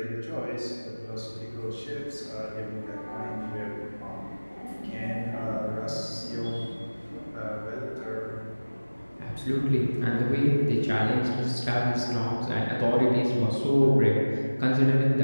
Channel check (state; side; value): inverted; both; correlation -1.00